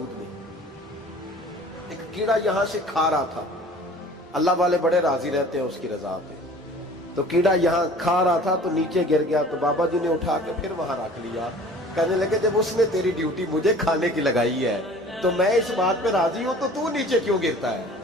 میں۔ ایک کیڑا یہاں سے کھا رہا تھا، اللہ والے بڑے راضی رہتے ہیں اس کی رضا پہ، تو کیڑا یہاں کھا رہا تھا تو نیچے گر گیا، تو بابا جی نے اٹھا کے پھر وہاں رکھ لیا، کہنے لگے جب اس نے تیری ڈیوٹی مجھے کھانے کی لگائی ہے تو میں اس بات پہ راضی ہوں، تو نیچے کیوں گرتا ہے؟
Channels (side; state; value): both; normal; correlation 0.47